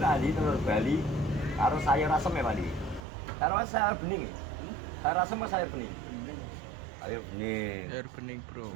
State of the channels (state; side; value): drops out; left; at 3.0 s